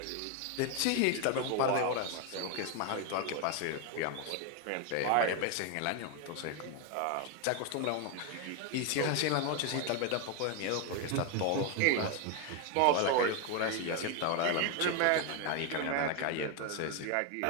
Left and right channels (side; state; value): both; different; correlation 0.01